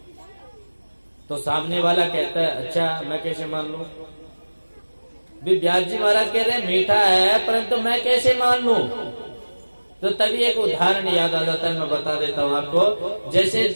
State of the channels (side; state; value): both; inverted; correlation -1.00